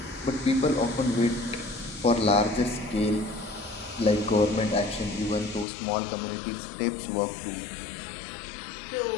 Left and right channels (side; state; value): right; drops out; at 5.7 s